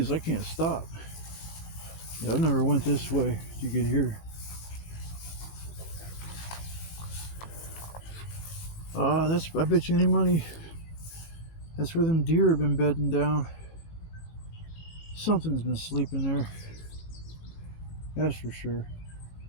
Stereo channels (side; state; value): right; late; 18 ms